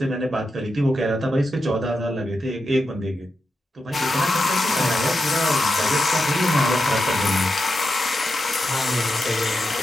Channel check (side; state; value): both; normal; correlation 0.88